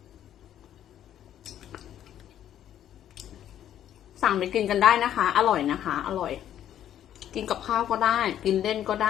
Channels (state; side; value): quieter; right; 10.9 dB